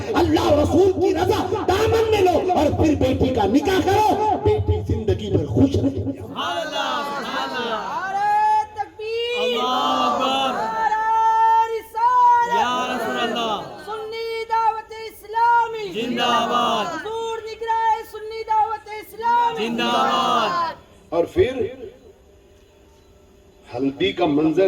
اللہ اور رسول کی رضا دامن میں لو، اور پھر بیٹی کا نکاح کرو، بیٹی زندگی بھر خوش رہے۔ اور پھر ہلدی کا منظر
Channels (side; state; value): both; identical; correlation 1.00